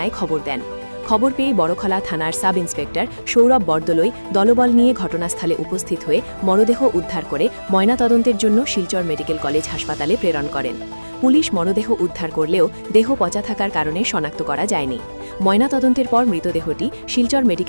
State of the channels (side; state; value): both; inverted; correlation -1.00